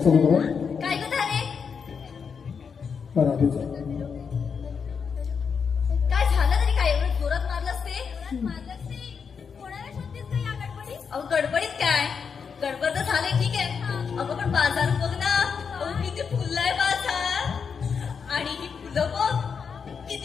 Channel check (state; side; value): quieter; right; 6.2 dB